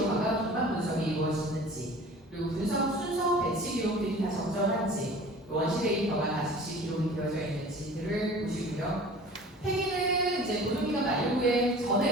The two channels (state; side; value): normal; both; correlation 0.43